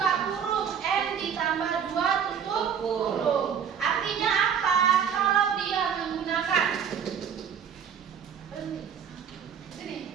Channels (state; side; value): quieter; left; 7.8 dB